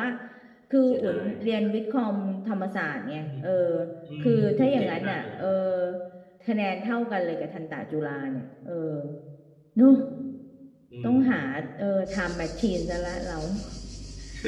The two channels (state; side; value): identical; both; correlation 1.00